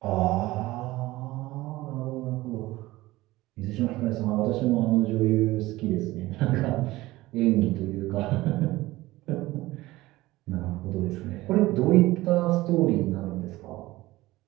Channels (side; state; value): left; quieter; 18.3 dB